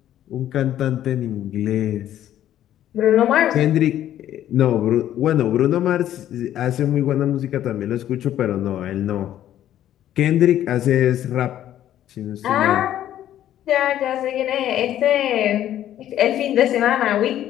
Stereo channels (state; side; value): quieter; right; 11.9 dB